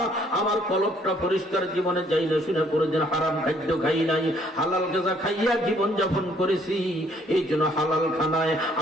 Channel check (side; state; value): both; normal; correlation 0.64